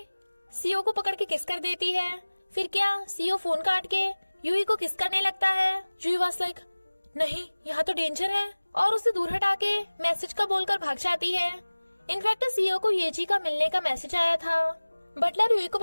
सीईओ को पकड़ के किस कर देती है। फिर क्या, सीईओ फोन काट के यूई को किस करने लगता है। यूई वाज लाइक, नहीं यहाँ तो डेंजर है, और उसे दूर हटा के मैसेज का बोलकर भाग जाती है। इनफैक्ट सीईओ को येजी का मिलने का मैसेज आया था। बटलर यूई को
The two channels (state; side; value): inverted; both; correlation -1.00